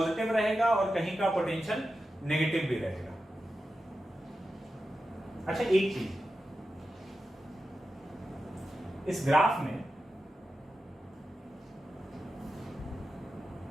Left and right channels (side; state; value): both; normal; correlation 0.91